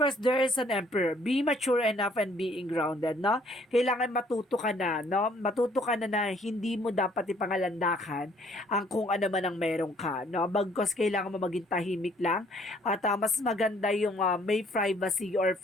there is an emperor. Be mature enough and being grounded, no? Kailangan matuto ka na, no? Matuto ka na hindi mo dapat ipangalandakan ang kung ano man ang meron ka, no? Bagkos kailangan mo maging tahimik lang at mas maganda yung may privacy or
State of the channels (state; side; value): normal; both; correlation 0.62